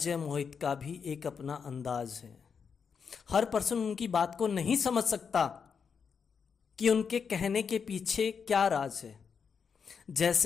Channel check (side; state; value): right; quieter; 6.3 dB